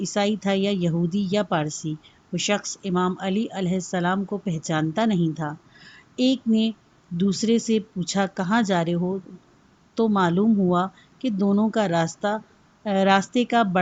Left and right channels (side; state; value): both; identical; correlation 1.00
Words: تھا یا یہودی یا پارسی۔ وہ شخص امام علی علیہ السلام کو پہچانتا نہیں تھا۔ ایک نے دوسرے سے پوچھا کہاں جا رہے ہو؟ تو معلوم ہوا کہ دونوں کا راستے کا